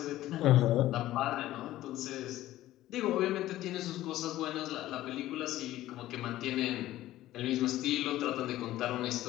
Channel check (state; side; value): quieter; right; 14.9 dB